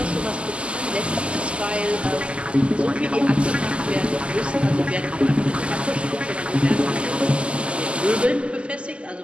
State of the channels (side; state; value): left; late; 0.054 ms